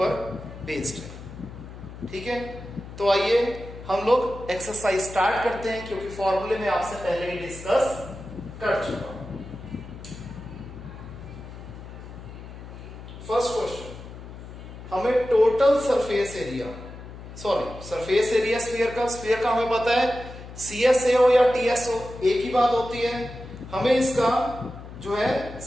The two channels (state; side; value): noise; left; hum, 13 dB below the sound